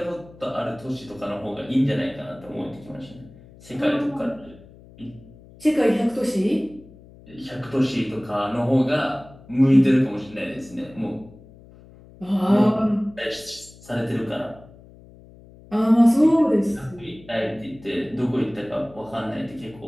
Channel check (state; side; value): noise; left; hum, 22 dB below the sound